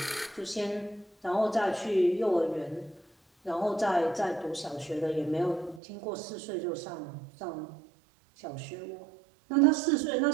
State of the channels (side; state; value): left; drops out; at 5.8 s